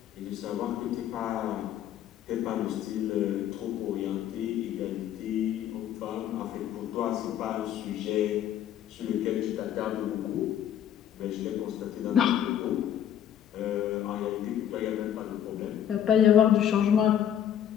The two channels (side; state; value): right; quieter; 10.2 dB